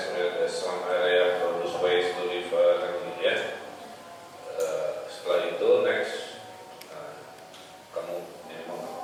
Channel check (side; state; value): both; identical; correlation 1.00